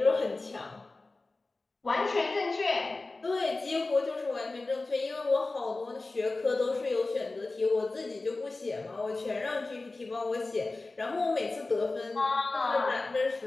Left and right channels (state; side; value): quieter; right; 3.3 dB